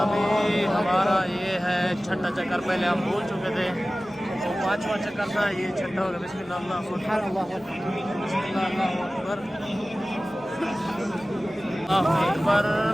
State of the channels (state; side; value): normal; both; correlation 0.97